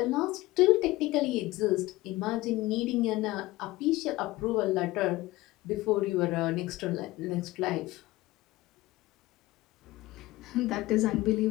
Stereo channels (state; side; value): quieter; right; 18.7 dB